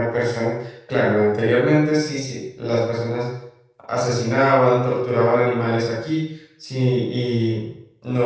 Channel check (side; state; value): both; identical; correlation 1.00